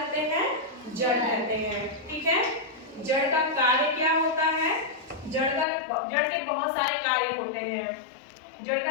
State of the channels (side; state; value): right; drops out; at 5.7 s